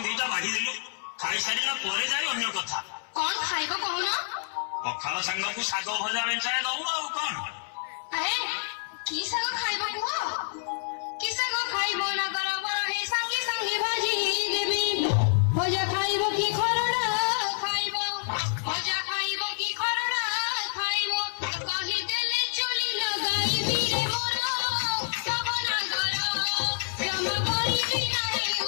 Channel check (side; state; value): right; silent; 59 dB below the other